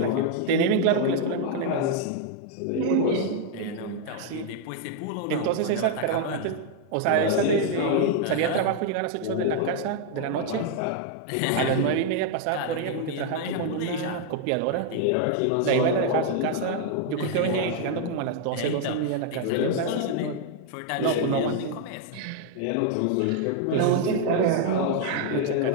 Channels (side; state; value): both; different; correlation 0.00